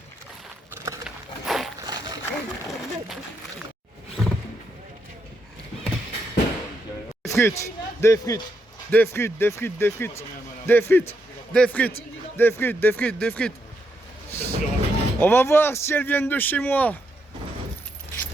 frites, des frites, des frites, des frites, des frites, des frites, des frites, des frites, des frites, des frites. On va voir si elles viennent de chez moi.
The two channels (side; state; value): both; normal; correlation 0.80